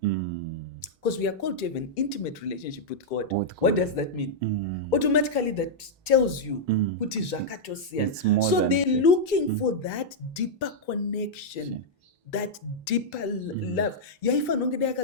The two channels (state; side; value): normal; both; correlation -0.06